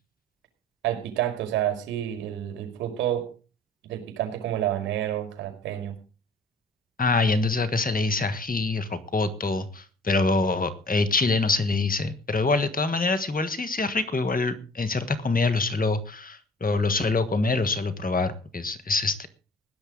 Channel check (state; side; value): normal; both; correlation 0.49